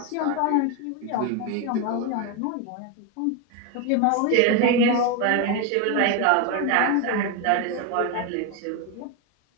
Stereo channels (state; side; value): different; both; correlation 0.02